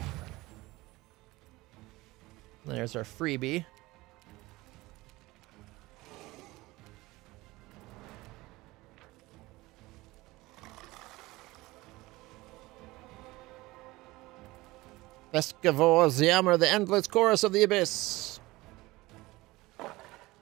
There's our freebie. Vescavor's Yammer, the endless chorus of the abyss.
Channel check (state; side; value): quieter; left; 20.2 dB